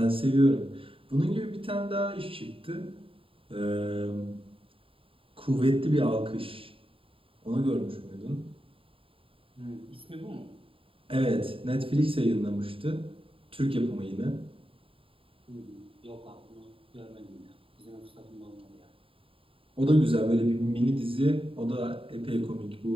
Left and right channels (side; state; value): left; late; 0.26 ms